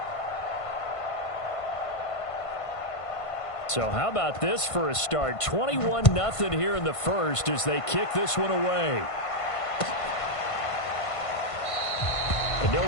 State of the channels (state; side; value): late; right; 1.5 ms